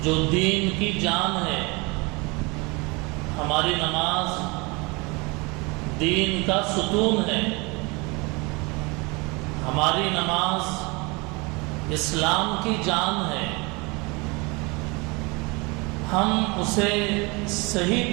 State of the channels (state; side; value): quieter; left; 27.3 dB